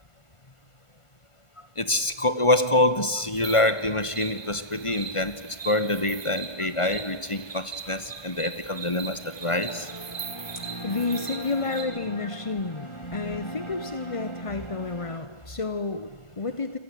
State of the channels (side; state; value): right; late; 1.5 ms